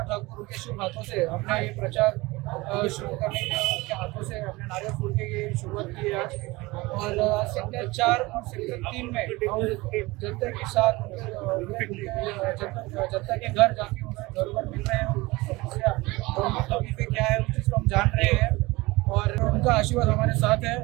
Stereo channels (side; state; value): left; quieter; 22.0 dB